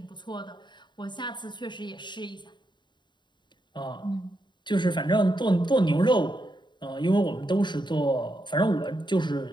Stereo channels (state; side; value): late; right; 0.22 ms